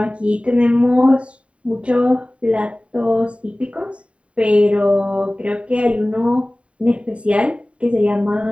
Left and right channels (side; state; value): left; late; 0.062 ms